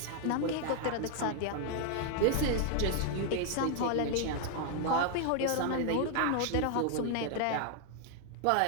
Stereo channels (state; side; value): different; both; correlation 0.00